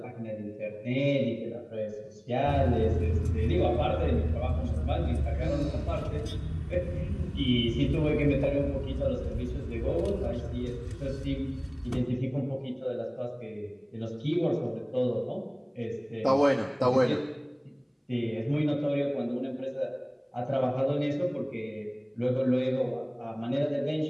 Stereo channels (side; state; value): both; identical; correlation 1.00